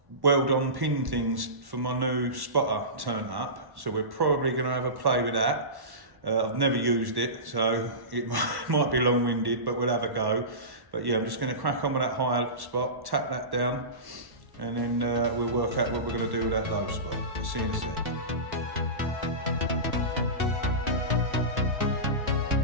weld-on pin things for my new spotter turned up, so we're probably going to have a play with that. I've never used it, so it might be long-winded, but we'll have a go. But yeah, I'm just going to crack on with that higher spot, tap that down, and then we'll work out what we're going to do with that low spot. See you in a sec.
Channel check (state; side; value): late; left; 1.1 ms